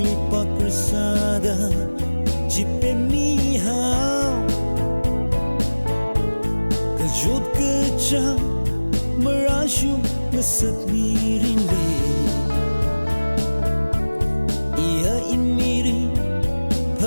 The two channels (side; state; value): both; inverted; correlation -1.00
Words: lipat bersada jipe mihau kejut kejang merasyum ngeset miring li ia inmiri